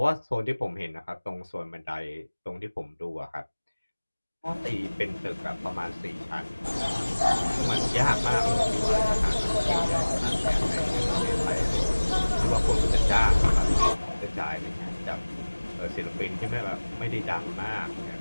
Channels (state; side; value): inverted; both; correlation -1.00